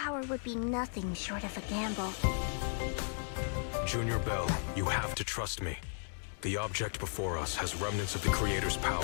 would be nothing short of a gamble. Junior Bell, you have to trust me. The object before us has remnants of the Creator's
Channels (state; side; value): silent; right; digital silence